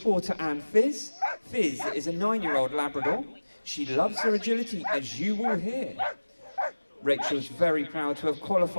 Porter and Fizz. Fizz is a 9-year-old Labrador She loves her agility, as you will hear. Rachel's very proud to have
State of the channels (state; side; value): inverted; both; correlation -1.00